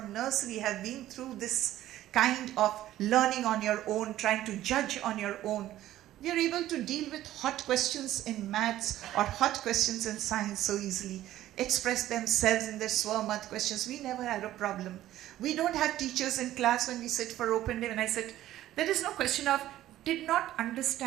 nursery have been through this kind of learning on your own, trying to judge on your own, we are able to deal with hot questions in maths or hot questions in science so easily, express themselves in their Swamath questions. We never had a problem. We don't have teachers in class when we sit for open day. When I sit, there is no question of did not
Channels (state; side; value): quieter; left; 13.9 dB